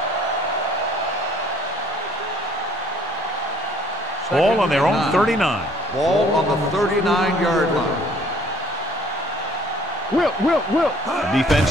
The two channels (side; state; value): both; normal; correlation 0.58